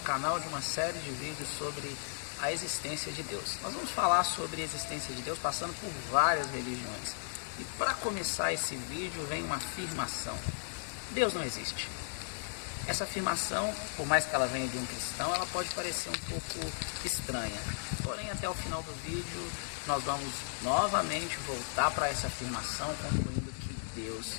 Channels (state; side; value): silent; right; digital silence